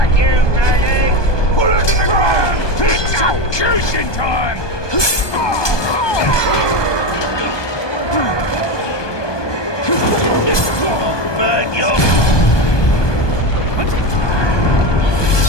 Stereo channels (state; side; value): late; right; 1.2 ms